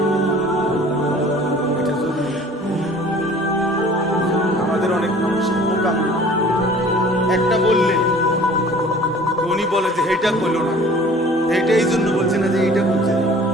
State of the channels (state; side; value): normal; both; correlation 0.49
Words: এটা জরুরি। আমাদের অনেক মানুষের মোকাম একটা বললে উনি বলে যে এইটা করলো না, এইটা এই জন্য বলছে না যে এইটা বলছে না,